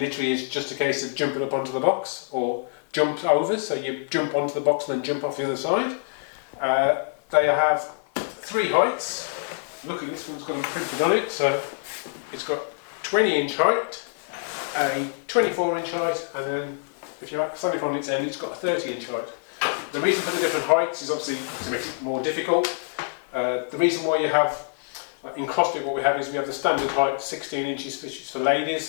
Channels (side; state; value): right; silent; digital silence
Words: it's just a case of jumping up onto the box or jump over, so you jump onto the box and then jump off the other side. They have 3 heights. Look at this one's got them printed on it, so it's got 20-inch height, a 24-inch height, and then if you stand it on its end, it's got a 30-inch height. The reason for the different heights is obviously to make it more difficult. The reason why you have, in CrossFit what we have is we have the standard height 16 inches which is for